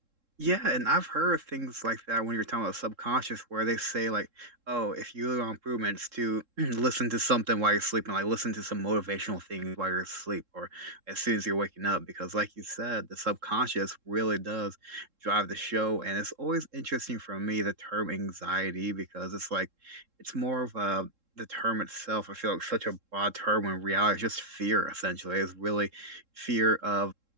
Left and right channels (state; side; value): late; left; 3.7 ms